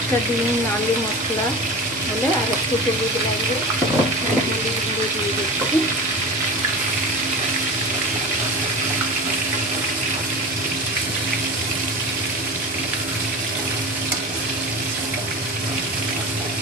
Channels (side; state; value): both; normal; correlation 0.31